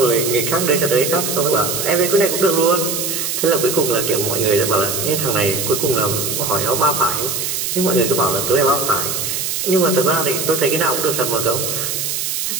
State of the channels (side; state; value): right; noise; hiss, 2 dB below the sound